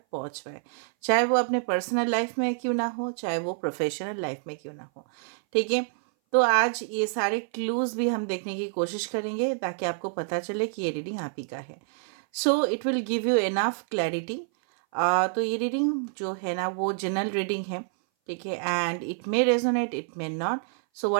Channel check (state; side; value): silent; left; 58 dB below the other